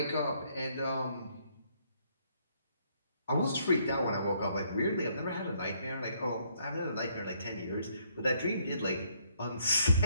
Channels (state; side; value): inverted; both; correlation -0.69